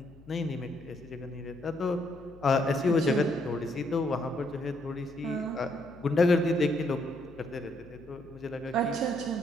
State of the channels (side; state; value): left; noise; hum, 22 dB below the sound